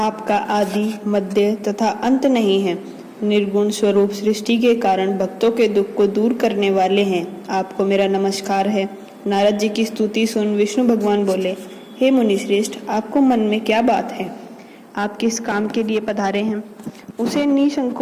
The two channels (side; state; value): both; identical; correlation 1.00